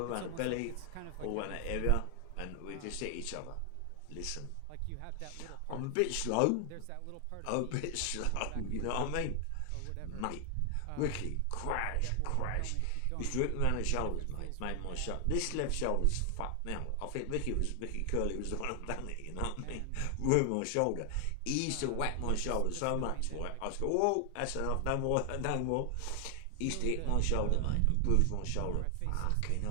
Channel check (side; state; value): both; different; correlation 0.00